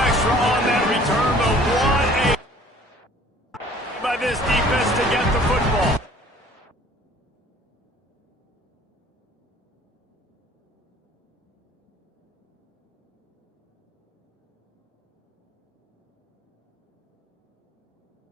on that return, but what a by this defense to get the football.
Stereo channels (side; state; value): both; normal; correlation 0.53